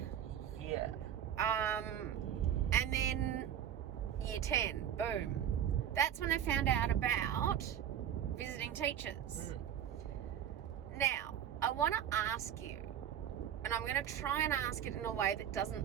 Yeah. And then year 10, boom. That's when I found out about visiting teachers. Now, I want to ask you, and I'm going to try and ask it in a way that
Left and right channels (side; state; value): left; quieter; 9.9 dB